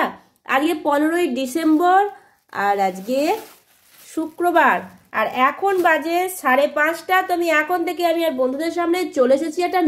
আজকে 15ই ডিসেম্বর আর আজকে শুক্রবার, আর এখন বাজে 5:30। তো আমি এখন থেকে আমি আর বন্ধুদের সামনে চলে এসেছি একটা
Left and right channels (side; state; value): both; identical; correlation 1.00